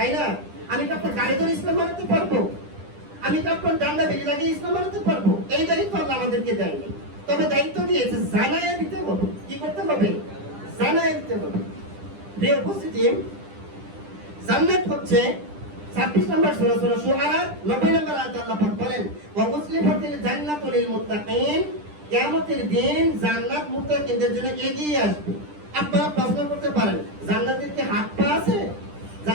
না? আমি কি আপনার গাড়ি ধরে ইসলাম মানাতে পারবো? আমি কি আপনার ডান্ডা বেরিয়ে লাগিয়ে ইসলাম মানাতে পারবো? এই দায়িত্ব আল্লাহ আমাদেরকে দেয়নি, তবে দায়িত্ব দিয়েছে জানাই দিতে হবে। কি করতে হবে? জানাই দিতে হবে। প্রিয় উপস্থিতি, জান্নাত হচ্ছে 26 নম্বর সূরা সূরা শুআরা 90 নম্বর আয়াতে আল্লাহ পাক বলেন, ওয়া উজলিফাতিল জান্নাতু লিল মুত্তাকিন, কিয়ামতের দিন জান্নাত মুত্তাকিনদের জন্য এগিয়ে আসবে। আপনারা প্রশ্ন করতে পারেন, জান্নাতের কি হাত পা আছে?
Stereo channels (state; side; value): late; left; 10 ms